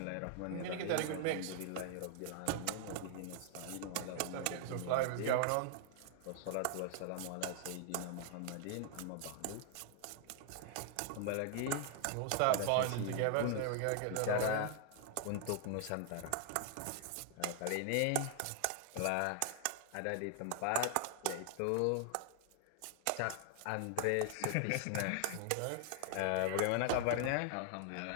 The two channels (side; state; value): both; different; correlation 0.00